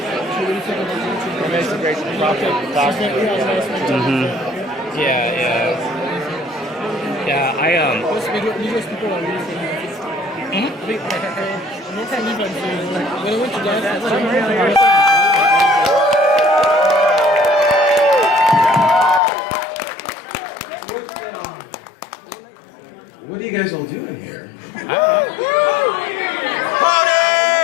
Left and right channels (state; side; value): drops out; right; at 19.2 s